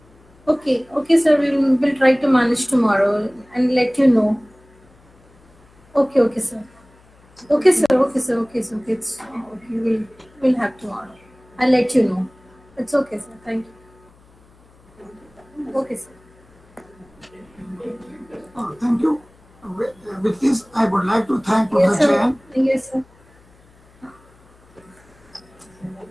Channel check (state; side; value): noise; left; hum, 29 dB below the sound